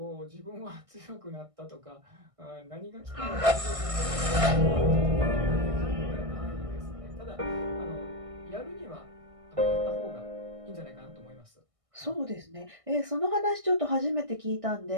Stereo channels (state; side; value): late; left; 1.6 ms